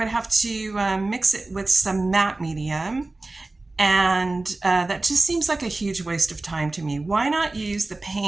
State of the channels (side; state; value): left; quieter; 3.1 dB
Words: have to mix it with some matte medium, and that just seems like a huge waste of time to me. Why not use the